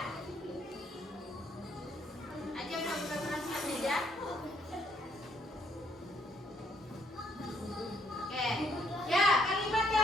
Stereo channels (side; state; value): both; normal; correlation 0.70